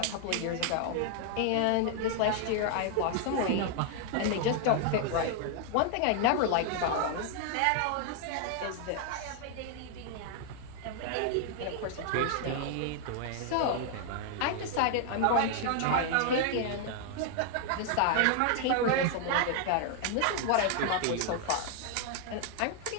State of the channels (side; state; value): both; different; correlation 0.00